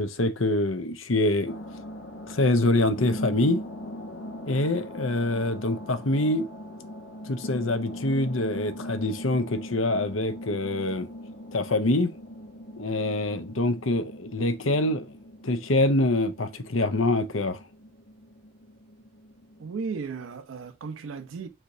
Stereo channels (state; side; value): normal; both; correlation 0.29